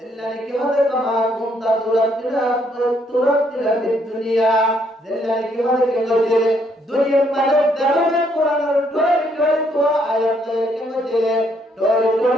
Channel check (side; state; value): both; normal; correlation 0.71